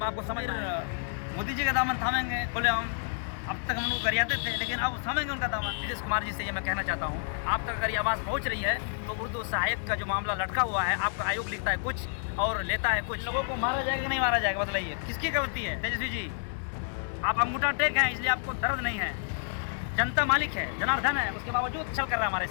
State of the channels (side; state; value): right; silent; digital silence